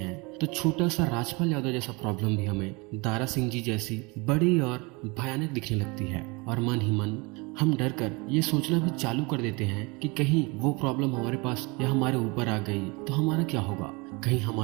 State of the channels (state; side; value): quieter; left; 27.3 dB